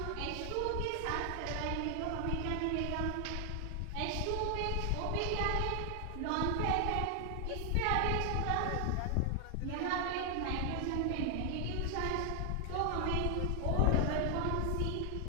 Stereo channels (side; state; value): both; different; correlation 0.00